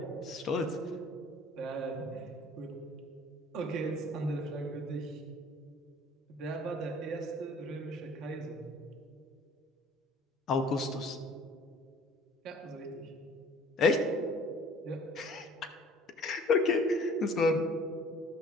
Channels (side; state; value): both; normal; correlation 0.52